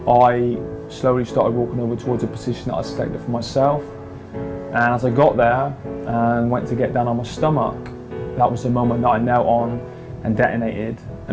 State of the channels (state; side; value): identical; both; correlation 1.00